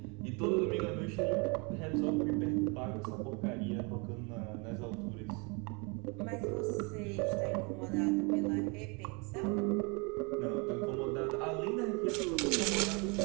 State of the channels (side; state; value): left; quieter; 31.3 dB